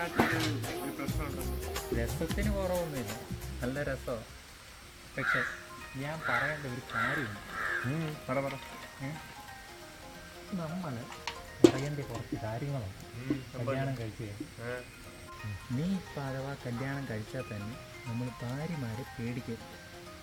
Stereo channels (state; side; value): identical; both; correlation 1.00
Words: ഒരു പ്രശ്നമുണ്ടോ? രസത്തിന് കുറവൊന്നുമില്ല, നല്ല രസമാണ്. പക്ഷെ ഞാൻ പറയേണ്ട ഒരു കാര്യമുണ്ട്. നമ്മൾ അറിയേണ്ട കുറച്ച് കാര്യങ്ങളുണ്ട് കല്യാണം കഴിച്ചു കഴിഞ്ഞാൽ. നീ ഇപ്പം അഥവാ കല്യാണം കഴിച്ചാൽ തന്നെ നമ്മൾ ഭാര്യമാരെ പേടിക്കും,